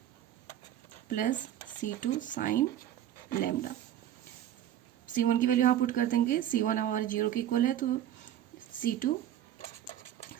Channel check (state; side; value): quieter; left; 11.6 dB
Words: plus c2 sine lambda. c1 की value यहाँ put कर देंगे, c1 हमारे 0 के इक्वल है तो c2